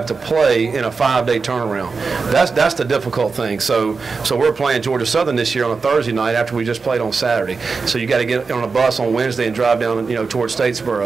to play in a 5-day turnaround. That's the difficult thing. So we're playing Georgia Southern this year on a Thursday night after we just played on Saturday. So you got to get on a bus on Wednesday and drive down, towards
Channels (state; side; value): quieter; left; 4.7 dB